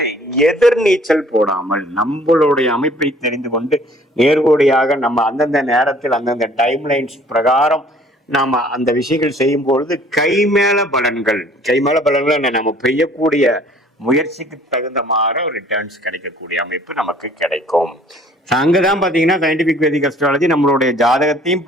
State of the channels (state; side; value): normal; both; correlation 0.55